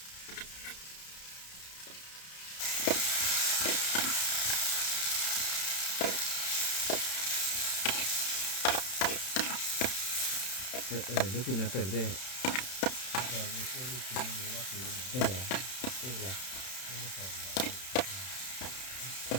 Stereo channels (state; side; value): late; right; 31 ms